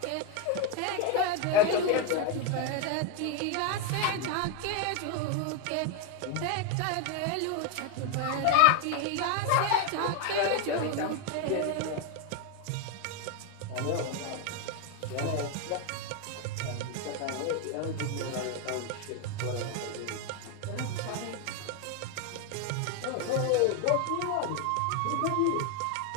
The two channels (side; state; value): both; different; correlation 0.01